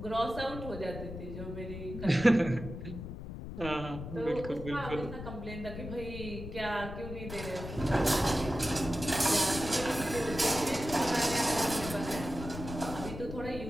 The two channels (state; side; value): noise; left; rumble, 9 dB below the sound